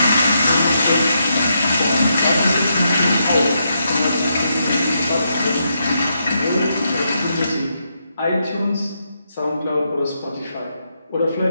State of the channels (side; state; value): both; inverted; correlation -0.81